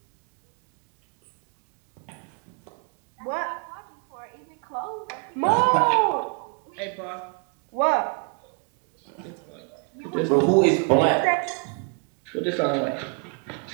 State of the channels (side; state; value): left; quieter; 39.4 dB